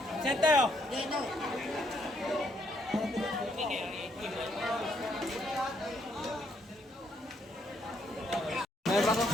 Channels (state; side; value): normal; both; correlation 0.72